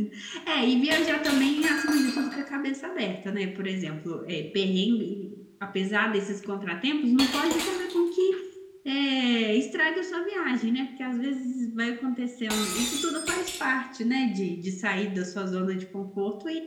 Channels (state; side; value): identical; both; correlation 1.00